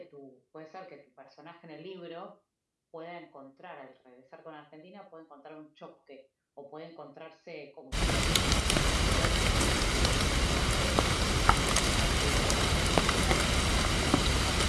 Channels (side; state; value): both; identical; correlation 1.00